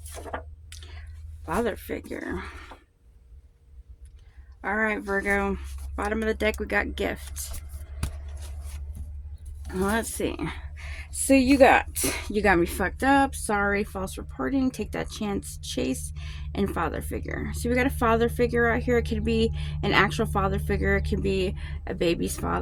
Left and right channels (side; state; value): both; identical; correlation 1.00